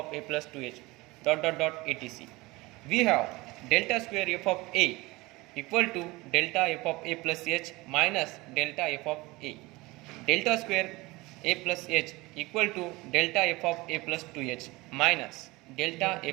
a plus 2h dot etc. We have delta square f of a equal to delta f of a plus h minus delta f of a. Delta square a plus h equal to delta f of a plus 2h minus delta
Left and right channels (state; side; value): quieter; left; 22.1 dB